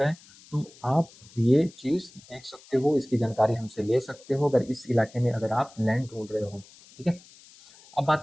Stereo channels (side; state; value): left; noise; hiss, 24 dB below the sound